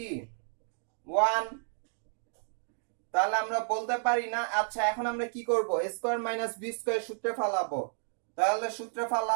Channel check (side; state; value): left; silent; digital silence